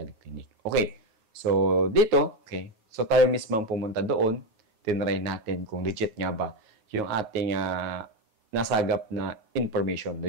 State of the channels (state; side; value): late; left; 9.3 ms